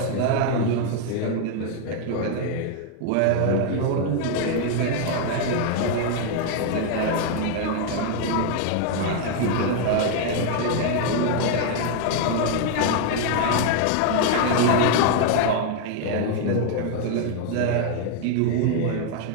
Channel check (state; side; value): different; both; correlation 0.00